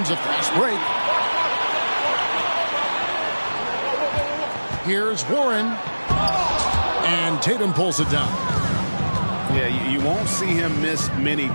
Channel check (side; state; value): both; inverted; correlation -1.00